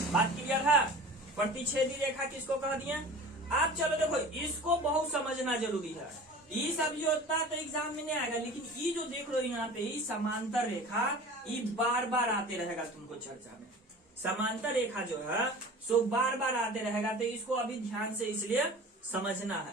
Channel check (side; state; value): both; normal; correlation 0.39